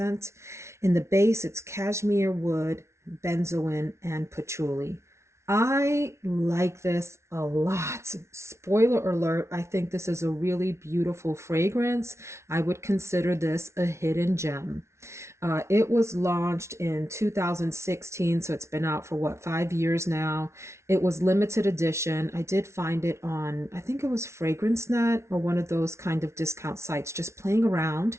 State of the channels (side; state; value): left; late; 0.13 ms